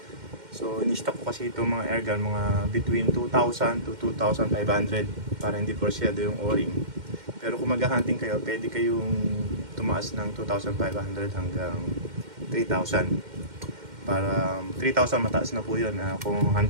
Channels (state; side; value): late; left; 2.1 ms